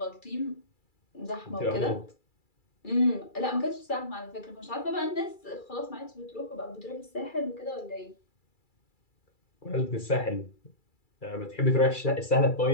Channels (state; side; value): late; right; 2.3 ms